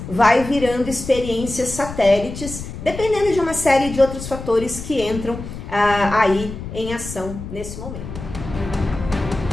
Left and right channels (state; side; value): noise; left; rumble, 10 dB below the sound